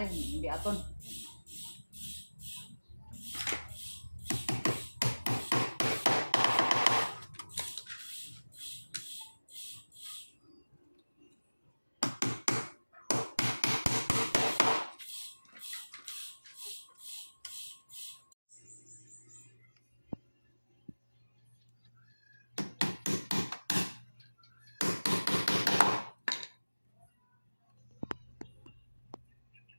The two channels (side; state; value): both; inverted; correlation -1.00